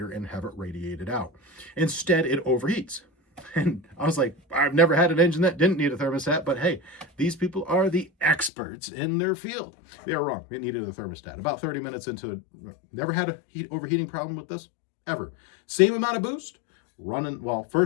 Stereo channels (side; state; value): right; drops out; at 8.5 s